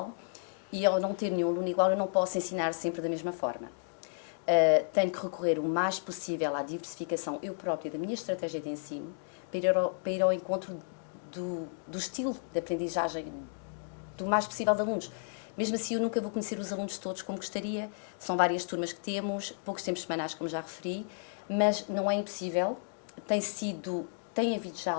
e ao não ter nenhum aluno igual eu não posso ensinar sempre da mesma forma. Tenho que recorrer o mais possível à diversificação eu própria da minha estratégia de ensino para ir ao encontro do estilo de aprendizagem do mais possível de alunos. Mesmo assim, eu nunca vou conhecer os alunos todos como gostaria, são várias turmas que temos, poucos tempos semanais, como já referi, mas não é impossível, tem havido já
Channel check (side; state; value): right; silent; digital silence